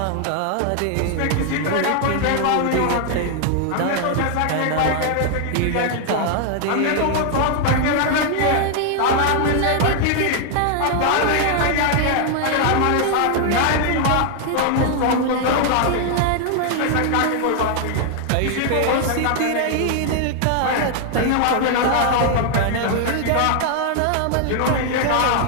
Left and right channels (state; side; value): different; both; correlation 0.00